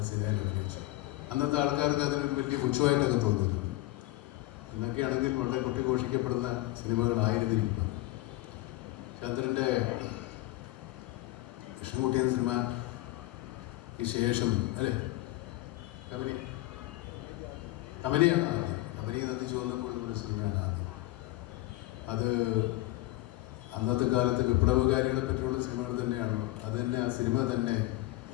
സിനിമയിൽ അഭിനയിച്ചത്. അന്നത്തെ ആൾക്കാർക്ക് അതിനൊരു വലിയ പുച്ഛമായിട്ടൊക്കെ തോന്നിയിരുന്നു. എന്നൊക്കെയാണെങ്കിൽ വളരെ കൊട്ടിഘോഷിക്കപ്പെടുന്ന സിനിമകളായിരുന്നിരിക്കും. ചന്ദ്രൻ്റെ കൃഷ്ണൻകുട്ടി എന്ന സിനിമ ഈ ശേഷം കബനിയാണ് ആദ്യം. കബനി നന്ദി ചോർന്നപ്പോൾ ഒരു സിനിമയാണ് ആദ്യം. അത് അന്നത്തെ കാലത്ത് വിപ്ലവകാരികളെ പറ്റിയുള്ള സിനിമകൾ തന്നെയാണോ, അത് തന്നെ, ആ സിനിമ തന്നെ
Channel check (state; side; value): quieter; right; 17.9 dB